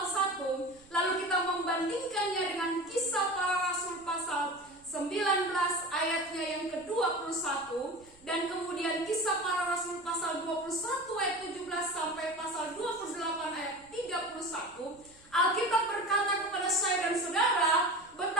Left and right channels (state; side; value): noise; right; rumble, 28 dB below the sound